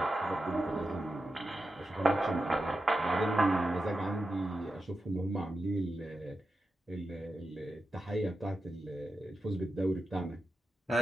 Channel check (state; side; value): normal; both; correlation 0.89